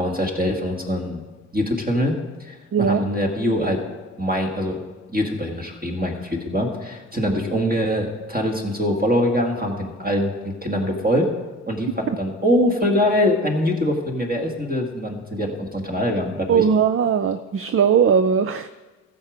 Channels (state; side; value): normal; both; correlation 0.33